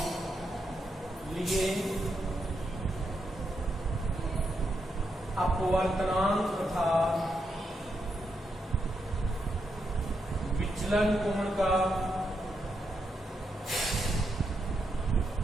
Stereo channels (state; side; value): normal; both; correlation 0.82